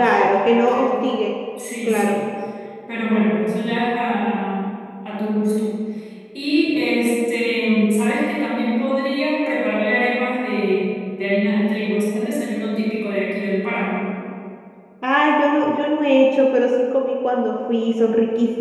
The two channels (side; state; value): both; identical; correlation 1.00